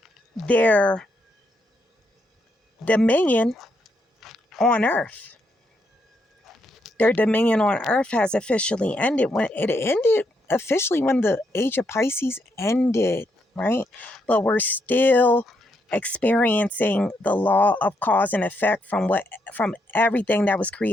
their dominion on earth. Their dominion on earth has officially ended. When it ended officially, when the age of Pisces ended, right? But we're still experiencing the law of cause and effect from everything that was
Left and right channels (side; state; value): both; normal; correlation 0.78